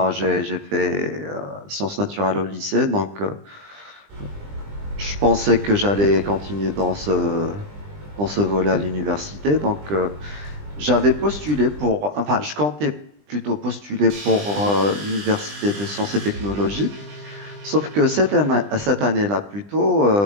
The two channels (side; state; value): left; late; 20 ms